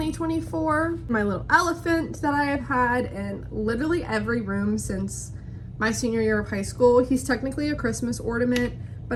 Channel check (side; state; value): both; identical; correlation 1.00